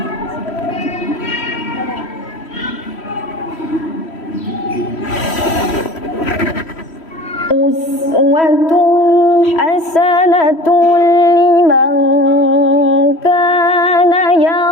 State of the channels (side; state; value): right; late; 3.1 ms